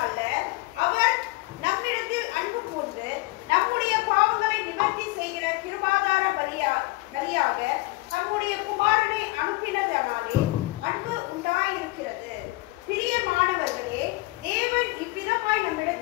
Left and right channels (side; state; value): right; quieter; 22.2 dB